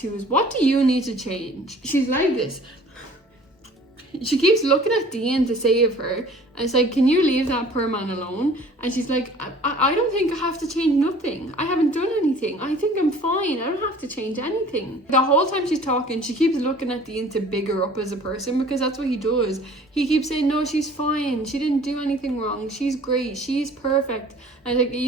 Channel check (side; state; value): both; normal; correlation 0.49